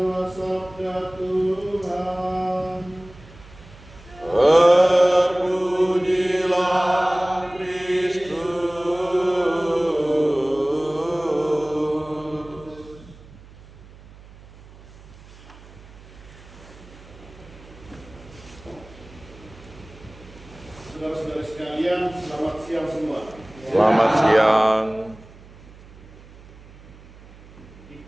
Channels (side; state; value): right; noise; hum, 21 dB below the sound